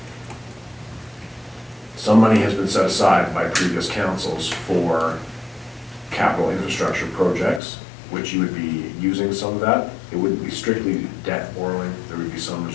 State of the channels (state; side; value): drops out; right; at 7.6 s